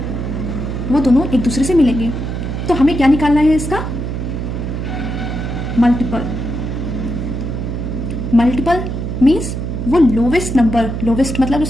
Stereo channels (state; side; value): noise; right; hum, 4 dB below the sound